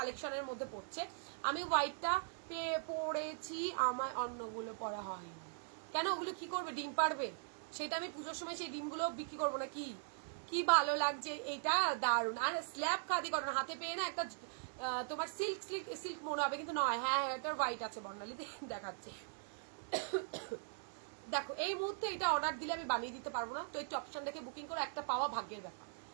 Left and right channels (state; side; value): silent; left; digital silence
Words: মধ্যে পড়ছে। আমি হোয়াইটটা পরেছি, আমার অন্যগুলো পরা হয়নি, কেন ওগুলো কি করবে, ডিম পারবে, সেটা আমি পুজোর সময় সেই ডিমগুলো বিক্রি করবো না, কি কি ভালো লাগছে, এটা দারুণ। আর স্ল্যাব খাদি কটন হাতে পেয়ে না একটা তোমার সিল্ক সিল্ক সিল্ক মনে হবে, কিন্তু নয়। হ্যাঁ হ্যাঁ এটার হোয়াইট আছে, বর্ণালী দেখাচ্ছে। দেখো এই মুহূর্তে এটা অর্ডার দিলে আমি বানিয়ে দিতে পারবো না, তো একটু অপশন দেখে বুকিং করো, একটা পাওয়া ভাগ্যের ব্যাপার।